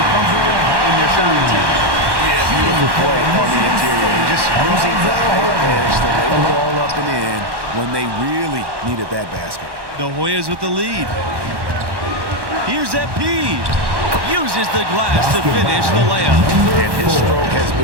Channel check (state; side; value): late; left; 1.1 ms